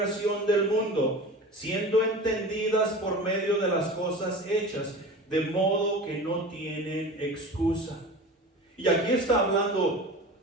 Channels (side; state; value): both; normal; correlation 0.34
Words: del mundo, siendo entendidas por medio de las cosas hechas, de modo que no tienen excusa. Y aquí está hablando